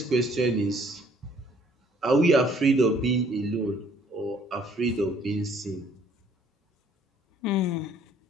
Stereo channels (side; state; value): both; normal; correlation 0.60